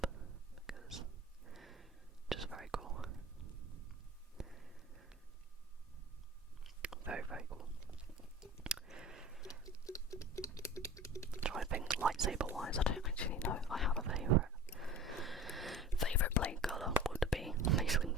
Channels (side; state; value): both; normal; correlation 0.38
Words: because it's just very cool. Very, very cool. Try to think lightsaber wise, I don't actually know. I have a favourite blade colour would be Mace